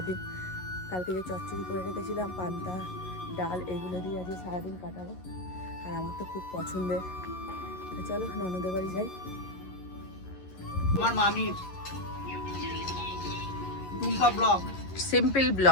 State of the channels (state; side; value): late; right; 11 ms